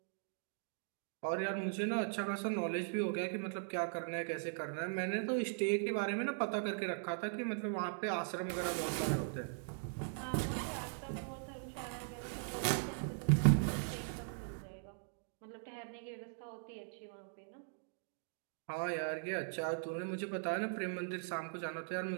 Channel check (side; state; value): left; silent; digital silence